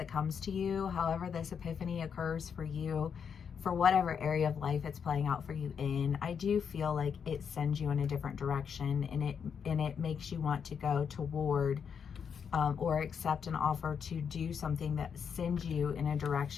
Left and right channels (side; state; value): right; quieter; 7.0 dB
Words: comes to you, however this epiphany occurs for you, for whatever area of life it's playing out for you in, I do feel like it sends you in a different direction and it makes you want to go toward or accept an offer to do something that sends you in a